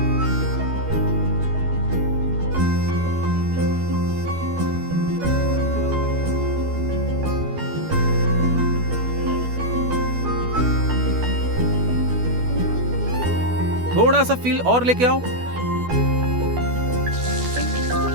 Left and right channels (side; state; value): left; late; 12 ms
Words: थोड़ा सा फील और लेके आओ।